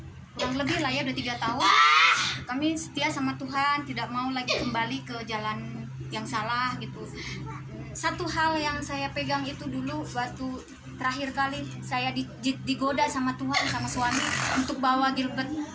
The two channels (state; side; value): identical; both; correlation 1.00